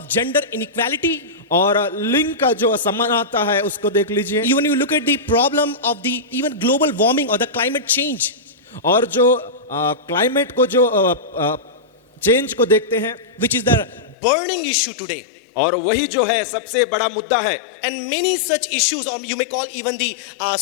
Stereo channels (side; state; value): right; drops out; at 14.2 s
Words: gender inequality. और लिंग का जो असमानता है उसको देख लीजिए। Even you look at the problem of the even global warming or the climate change. और जो क्लाइमेट को जो चेंज को देखते हैं, which is the burning issue today. और वही जो है सबसे बड़ा मुद्दा है। And many such issues, or you may call even the